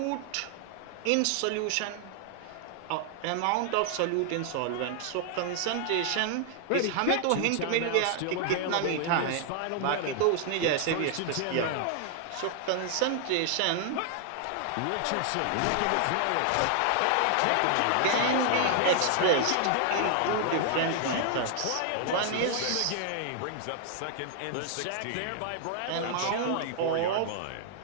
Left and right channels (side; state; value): both; different; correlation 0.00